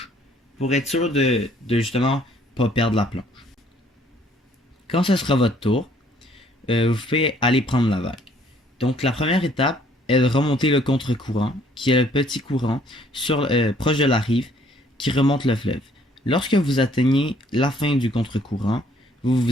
pour être sûr de justement pas perdre la planche. Quand ce sera votre tour, vous pouvez aller prendre la vague. Donc, la première étape est de remonter le contre-courant, qui est le petit courant proche de la rive qui remonte le fleuve. Lorsque vous atteignez la fin du contre-courant, vous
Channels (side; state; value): both; normal; correlation 0.62